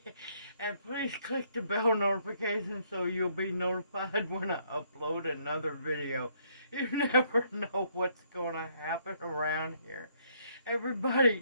please click the bell notification so you'll be notified when I upload another video. You never know what's going to happen around here.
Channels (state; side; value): inverted; both; correlation -0.69